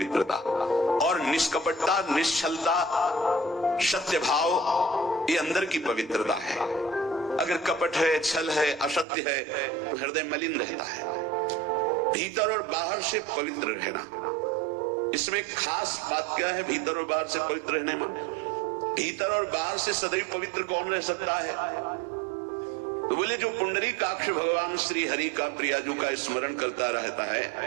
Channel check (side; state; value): left; drops out; at 9.1 s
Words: और निष्कपटता, निश्चलता, सत्य भाव, ये अंदर की पवित्रता है। अगर कपट है, छल है, असत्य है तो हृदय मलिन रहता है। भीतर और बाहर से पवित्र रहना, इसमें खास बात क्या है? भीतर और बाहर से पवित्र रहने में, भीतर और बाहर से सदैव पवित्र कौन रह सकता है? तो बोले जो पुंडरीकाक्ष भगवान श्री हरि का, प्रियाजू का स्मरण करता रहता